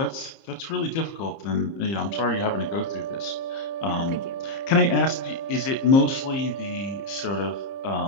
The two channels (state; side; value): late; right; 30 ms